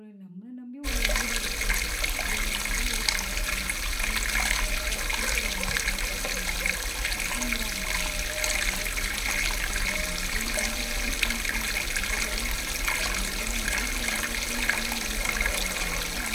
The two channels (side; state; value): both; identical; correlation 1.00